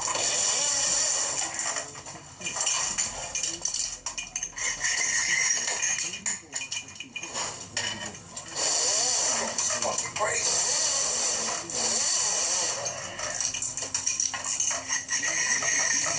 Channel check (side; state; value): both; identical; correlation 1.00